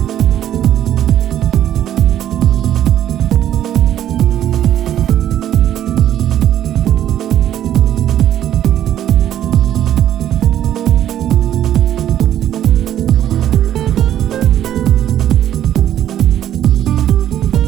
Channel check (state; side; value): quieter; left; 11.3 dB